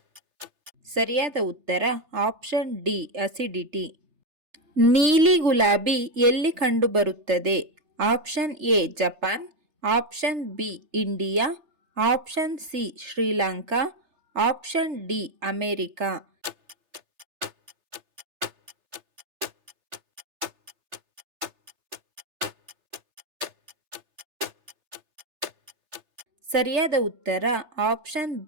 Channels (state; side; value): late; left; 3.3 ms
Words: ಸರಿಯಾದ ಉತ್ತರ ಆಪ್ಷನ್ ಡಿ ಅಸಿಡಿಟಿ. ನೀಲಿ ಗುಲಾಬಿ ಎಲ್ಲಿ ಕಂಡುಬರುತ್ತದೆ? Option A Japan, option B India, option C Sri Lanka, option D America. ಸರಿಯಾದ ಉತ್ತರ ಆಪ್ಷನ್